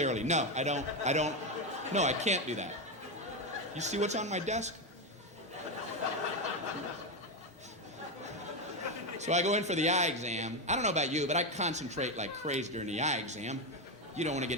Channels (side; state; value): both; normal; correlation 0.10